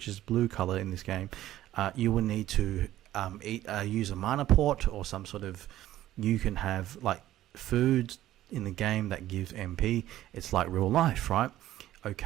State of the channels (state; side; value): quieter; left; 13.9 dB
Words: is blue color in this game, you will need to use a mana port or some sort of, you can have like food in the game that gives MP. It's like real life, right?